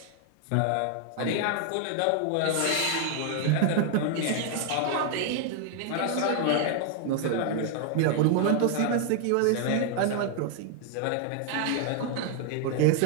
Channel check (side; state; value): both; different; correlation 0.00